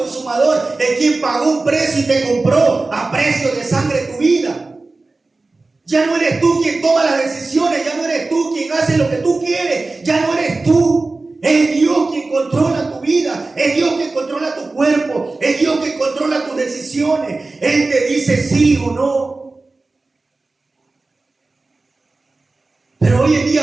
el quien pagó un precio y te compró a precio de sangre tu vida. Ya no eres tú quien toma las decisiones, ya no eres tú quien hace lo que tú quieres, ya no eres tú. Es Dios quien controla tu vida, es Dios quien controla tu cuerpo, es Dios quien controla tus decisiones. Él te dice sí o no. Pero hoy en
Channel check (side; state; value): left; quieter; 3.4 dB